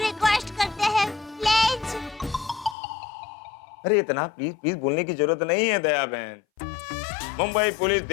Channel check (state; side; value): drops out; right; at 2.8 s